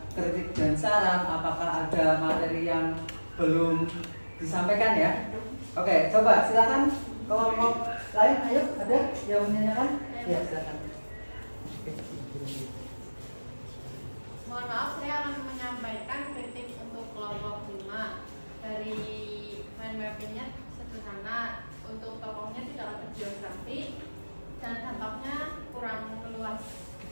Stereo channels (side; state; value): both; inverted; correlation -1.00